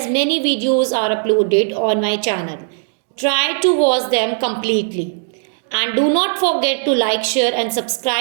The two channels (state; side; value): silent; left; digital silence